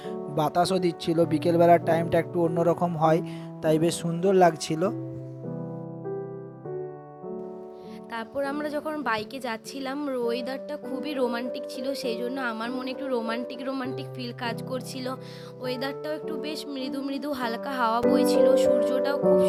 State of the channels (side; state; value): both; identical; correlation 1.00